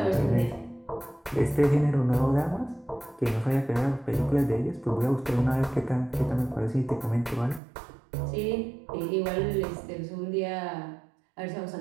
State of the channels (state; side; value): drops out; left; at 7.6 s